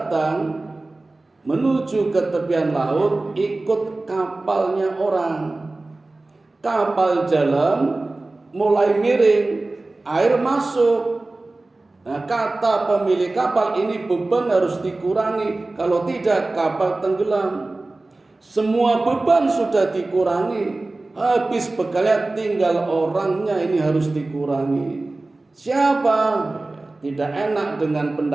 menuju ke tepian laut, ikut kapalnya orang. Kapal jalan, mulai miring, air masuk. Nah, kata pemilik kapal, ini beban harus dikurangi, kalau tidak kapal tenggelam. Semua beban sudah dikurangi, habis bekalnya, tinggal orangnya ini harus dikurangi. Siapa? Tidak enak dengan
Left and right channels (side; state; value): left; quieter; 3.1 dB